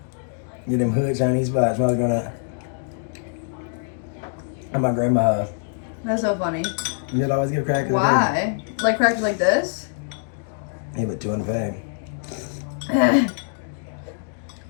Get them hood Chinese spots. When I was gonna at my grandma's house. That's so funny. You'd always give crackers. Why? Like crackers like this? He put 2 in the bag.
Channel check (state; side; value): silent; right; digital silence